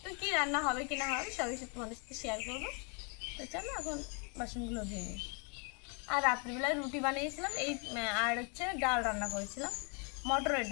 তো কী রান্না হবে কি না হবে সবই তোমাদের সাথে শেয়ার করবো। তো চলো এখন বাসনগুলো ধুয়ে নিই। আর রাত্রিবেলায় রুটি বানিয়েছিলাম এই, আর হচ্ছে ডাল রান্না করেছিলাম, মটরের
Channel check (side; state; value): right; quieter; 35.7 dB